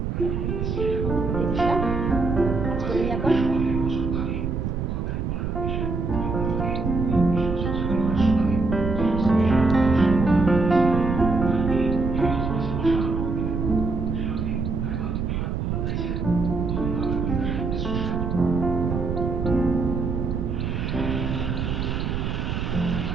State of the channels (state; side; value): noise; right; rumble, 2 dB below the sound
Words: ভাঁজ করে নিই এখন।